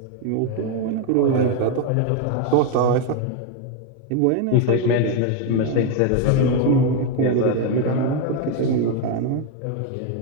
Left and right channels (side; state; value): both; different; correlation 0.01